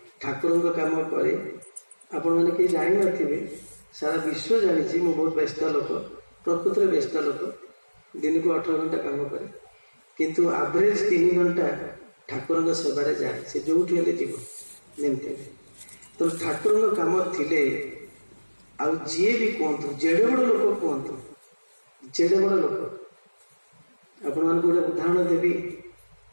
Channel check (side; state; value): both; inverted; correlation -1.00